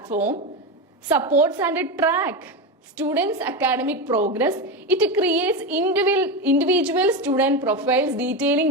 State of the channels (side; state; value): both; normal; correlation 0.16